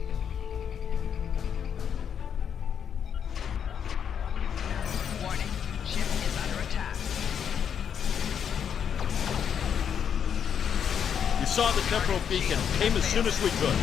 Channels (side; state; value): right; quieter; 8.0 dB